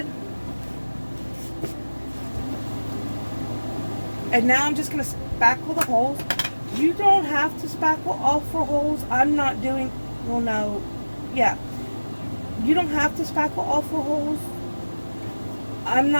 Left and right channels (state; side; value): inverted; both; correlation -1.00